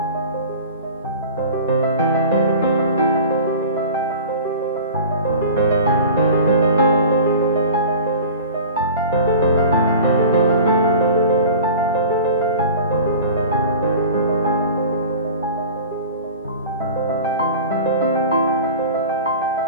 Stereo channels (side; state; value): both; inverted; correlation -0.38